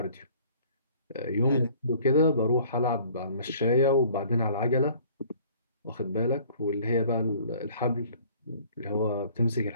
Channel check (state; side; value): inverted; both; correlation -0.54